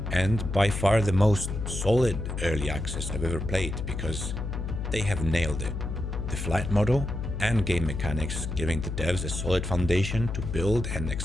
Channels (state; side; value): noise; left; hum, 4 dB below the sound